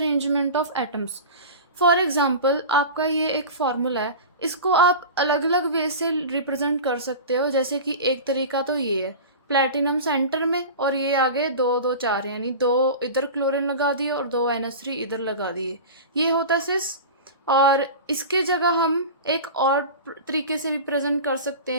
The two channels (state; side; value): inverted; both; correlation -0.31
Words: of atoms. For example आपका ये एक फार्मूला है, इसको आप अलग अलग वे से रिप्रेजेंट कर सकते हो। जैसे कि एक तरीका तो ये है, प्लेटिनम सेंटर में और ये आगे 2 2 4, यानी 2 इधर क्लोरीन लगा दिए और 2 NH3 इधर लगा दिए, ये होता है सिस। और इसके जगह हम एक और तरीके से रिप्रेजेंट कर सकते